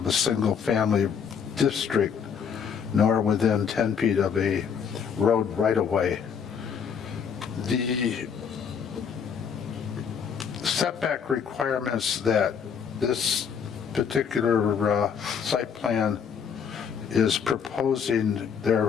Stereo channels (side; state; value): right; quieter; 7.0 dB